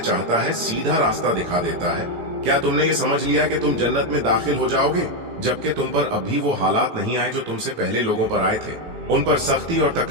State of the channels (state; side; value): late; left; 18 ms